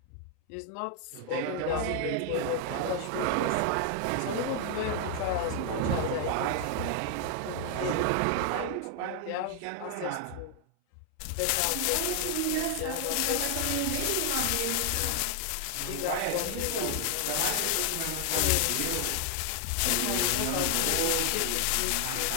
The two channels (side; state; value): both; different; correlation 0.00